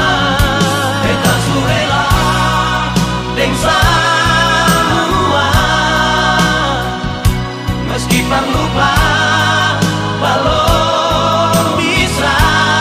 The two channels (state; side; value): identical; both; correlation 1.00